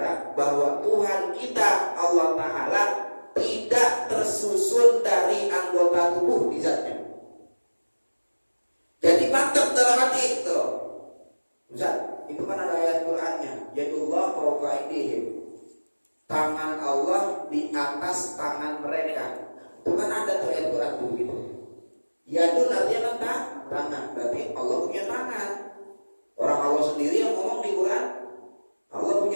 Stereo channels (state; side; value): inverted; both; correlation -1.00